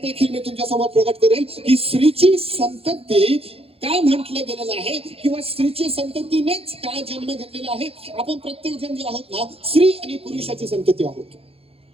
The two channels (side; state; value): left; late; 0.28 ms